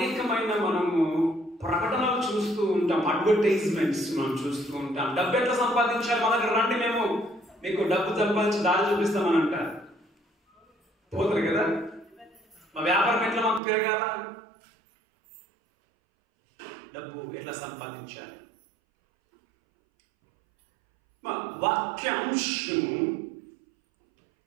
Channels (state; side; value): drops out; left; at 13.6 s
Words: ప్రకటనలు చూస్తూ ఉంటాం, అడ్వర్టైజ్మెంట్స్ మనం చూస్తూ ఉంటాం. డబ్బు ఎట్లా సంపాదించాలి, మా దగ్గర రండి, మేము మీకు డబ్బు సంపాదించి దారి చూపిస్తామని అంటారు. పోతారు కదా. మా వ్యాపారం ఎట్లా మాకు పెరగాల, డబ్బు ఎట్లా సంపాదించాలి. మా వాక్యాంశము